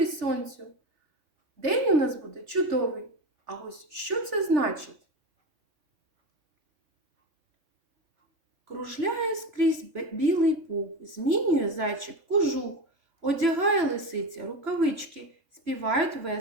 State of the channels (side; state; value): left; late; 3.5 ms